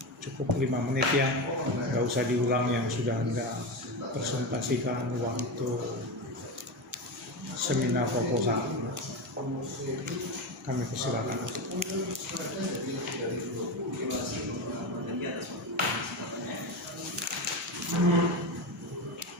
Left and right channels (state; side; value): normal; both; correlation 0.19